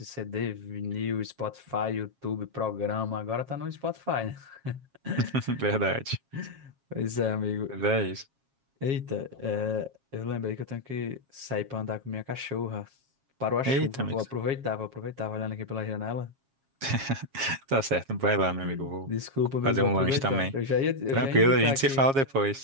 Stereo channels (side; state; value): left; late; 7.4 ms